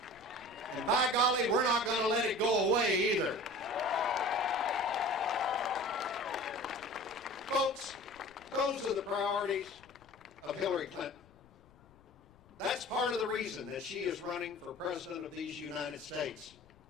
by golly, we're not going to let it go away either. Folks, those are the priorities of Hillary Clinton. That's part of the reason that she is running for president of these United States,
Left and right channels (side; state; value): left; noise; rumble, 27 dB below the sound